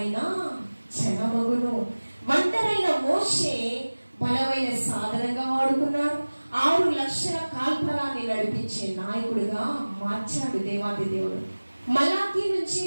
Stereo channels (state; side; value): inverted; both; correlation -1.00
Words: జనమగును. ఒంటరైన మోషే బలమైన సాధనంగా వాడుకున్నాడు. 6 లక్షల కాల్పరాన్ని నడిపించే నాయకుడిగా మార్చాడు దేవాది దేవుడు. మలాకి నుంచి